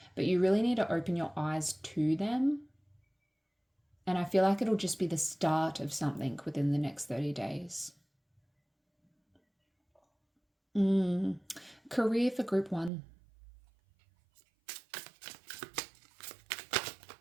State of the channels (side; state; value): left; drops out; at 12.9 s